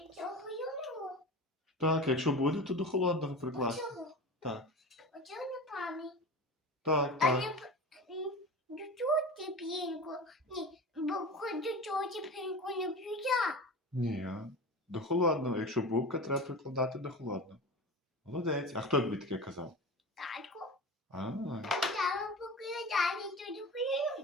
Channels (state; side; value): normal; both; correlation 0.31